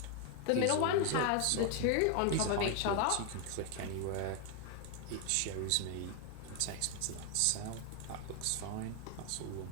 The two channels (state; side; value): different; both; correlation 0.01